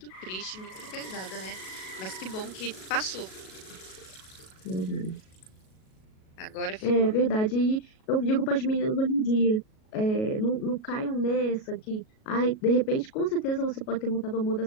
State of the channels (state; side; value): late; right; 37 ms